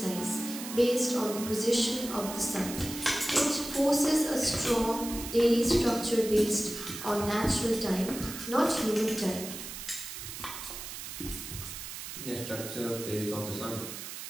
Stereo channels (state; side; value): noise; right; hiss, 9 dB below the sound